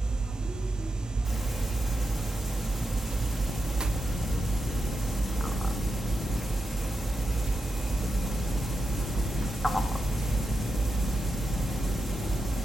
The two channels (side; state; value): both; normal; correlation 0.88